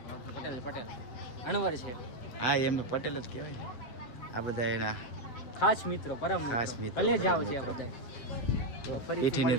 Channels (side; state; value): right; late; 8.1 ms